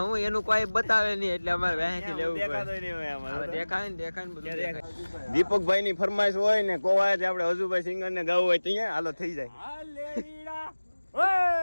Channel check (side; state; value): both; inverted; correlation -1.00